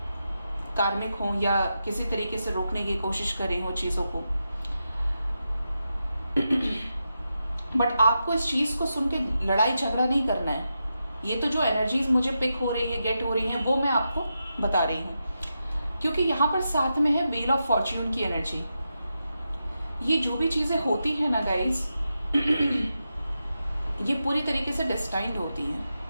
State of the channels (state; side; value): inverted; both; correlation -0.88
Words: कार्मिक हो या किसी तरीके से रोकने की कोशिश करे हो चीजों को। बट आपको इस चीज को सुन के लड़ाई झगड़ा नहीं करना है। ये तो जो एनर्जीज मुझे पिक हो रही है, गेट हो रही है, वो मैं आपको बता रही हूँ, क्योंकि यहां पर साथ में है व्हील ऑफ फॉर्च्यून की एनर्जी। ये जो भी चीजें होती है ना गाइस, ये पूरी तरीके से डेस्टाइन्ड होती हैं,